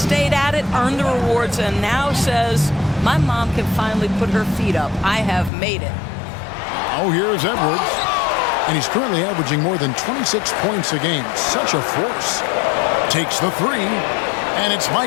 at it, earned the rewards, and now says, my mom can finally put her feet up. I have made it. Oh, here's Edwards. And he's currently averaging more than 26 points a game. Such a force. Takes the 3. And it's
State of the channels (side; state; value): right; drops out; at 5.5 s